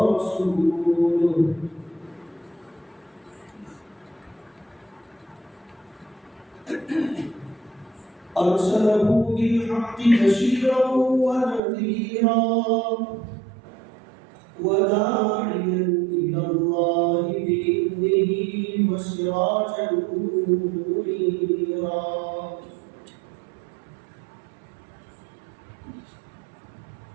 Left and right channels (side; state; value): left; drops out; at 11.6 s